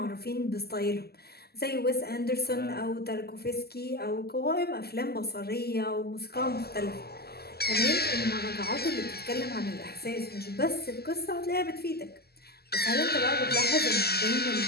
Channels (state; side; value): late; right; 0.46 ms